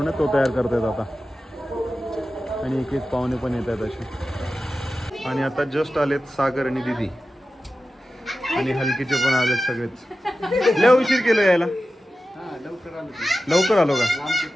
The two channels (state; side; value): normal; both; correlation 0.94